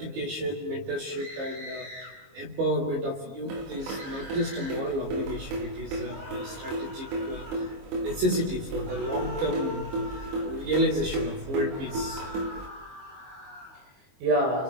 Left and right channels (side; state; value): left; late; 22 ms